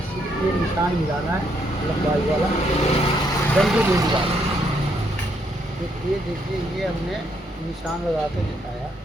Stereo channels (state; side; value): normal; both; correlation 0.73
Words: सिर्फ ये निशान मिलाना है, लंबाई वाला, डंडी नहीं मिलाना। तो ये देखिए ये हमने निशान लगा के दिखाया।